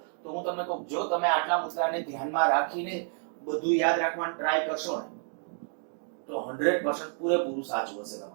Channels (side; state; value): left; silent; 56 dB below the other